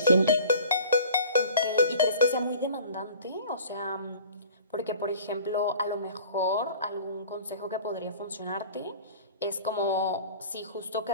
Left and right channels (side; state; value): both; inverted; correlation -0.45